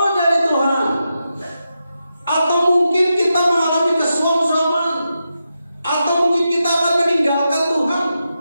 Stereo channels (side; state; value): both; inverted; correlation -0.88